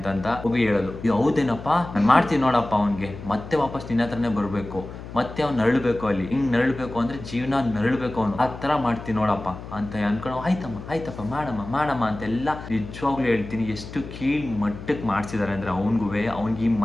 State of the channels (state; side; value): noise; left; hum, 12 dB below the sound